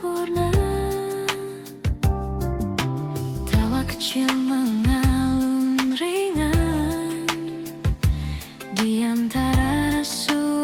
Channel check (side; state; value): both; identical; correlation 1.00